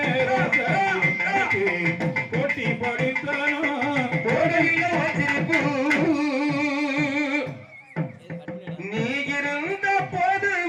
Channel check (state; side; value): identical; both; correlation 1.00